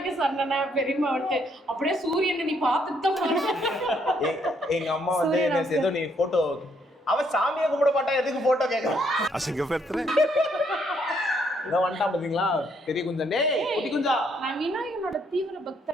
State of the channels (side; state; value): both; normal; correlation 0.71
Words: சொன்னா பெரியமா வந்து அப்படியே சூரியனை நீ பார்த்துட்டு தான் போற. எங்க அம்மா வந்து ஏதோ நீ போட்டோ அவ சாமியை கும்பிட மாட்டா எதுக்கு போட்டோ கேக்குறான்? அசிங்கப்படுத்துறேன். இதான் வந்துட்டான் பாத்தீங்களா பெரிய குஞ்சன். டேய் குட்டி குஞ்சா. நான் விநாயகனோட தீவிர